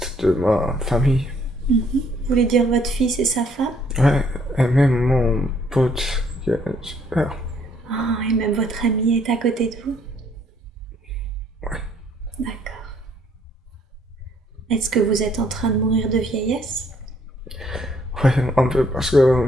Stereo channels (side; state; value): both; normal; correlation 0.65